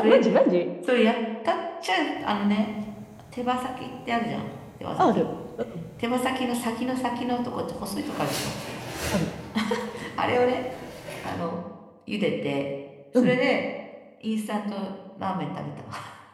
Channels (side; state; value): both; identical; correlation 1.00